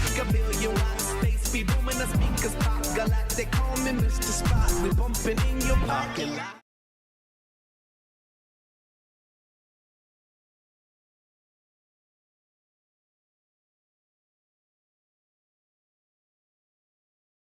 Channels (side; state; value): both; identical; correlation 1.00